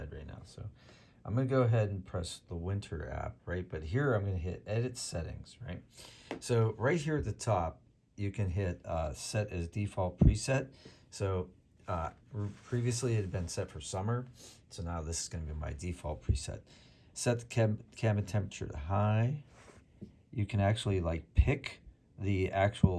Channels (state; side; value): identical; both; correlation 1.00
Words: right now. So, I'm going to go ahead and press the winter app, right? But here I'm going to hit edit settings, right? So, right here at the top, you can hit set as default preset. So previously it had been set for summer. So now this is going to be my default preset. Set the cabin temperature to high. You can actually like pick the